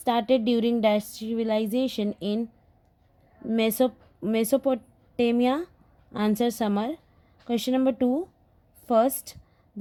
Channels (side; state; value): both; identical; correlation 1.00